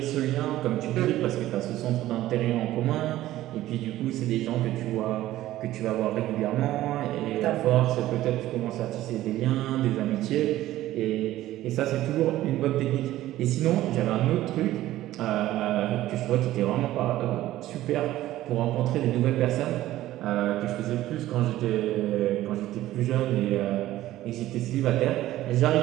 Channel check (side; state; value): left; quieter; 14.9 dB